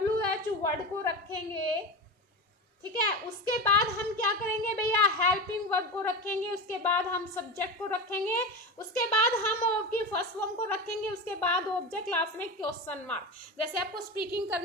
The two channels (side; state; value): both; normal; correlation 0.23